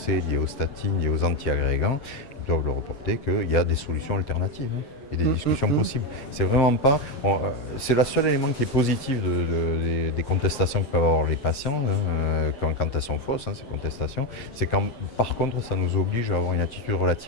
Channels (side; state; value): right; late; 7.6 ms